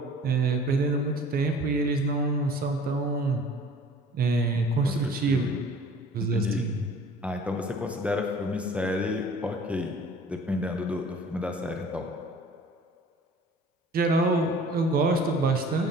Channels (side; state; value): both; normal; correlation 0.48